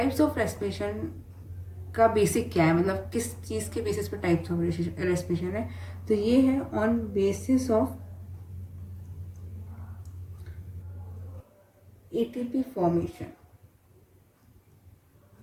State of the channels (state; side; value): identical; both; correlation 1.00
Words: of respiration का बेसिक क्या है, मतलब किस चीज़ के बेसिस पे टाइप्स ऑफ रेस्पिरेशन है. तो ये है on basis of ATP formation.